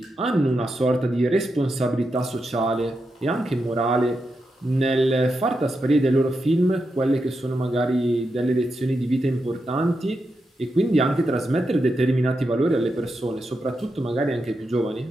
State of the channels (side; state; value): both; normal; correlation 0.86